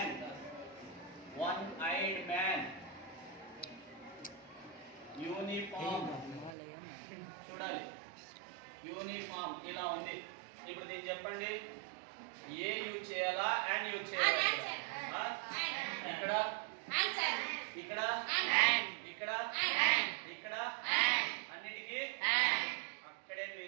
one eyed man. Uniform చూడాలి, యూనిఫామ్ ఇలా ఉంది. ఇప్పుడు దీన్ని చెప్పండి, ఏ యూజ్ చేయాలా అండ్ యూజ్ చేయాలా? ఇక్కడ ఇక్కడ ఇక్కడ ఇక్కడ అన్నిటికీ అక్కడే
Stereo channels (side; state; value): left; drops out; at 6.5 s